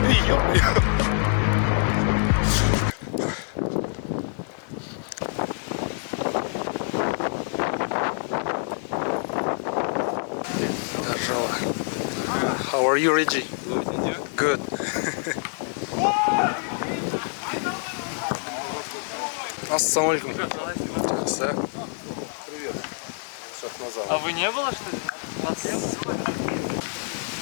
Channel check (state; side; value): silent; right; 61 dB below the other